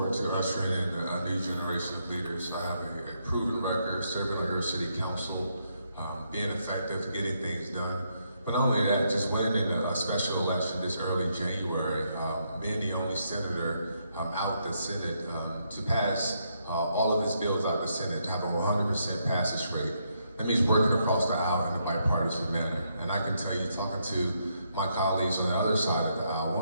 to ushering in a new generation of leaders. I have a proven record serving on your city council, being effective, getting things done. But not only that, just winning in a special election this early January, being the only senator out the Senate to pass all of his bills out the Senate, to have a 100% passage rate. That means working across the aisle in a bipartisan manner. And I can tell you, talking to my colleagues on the other side of the aisle,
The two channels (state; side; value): inverted; both; correlation -0.77